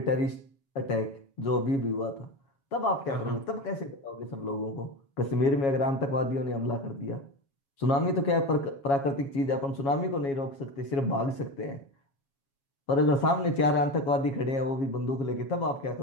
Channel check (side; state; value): right; late; 7.3 ms